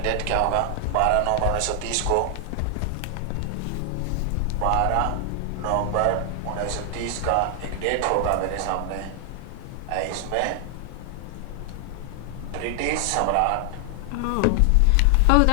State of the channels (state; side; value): different; both; correlation 0.00